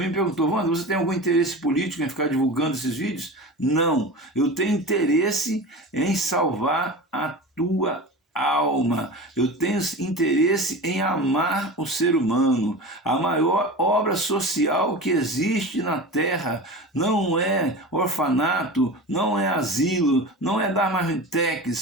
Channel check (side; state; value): both; normal; correlation 0.31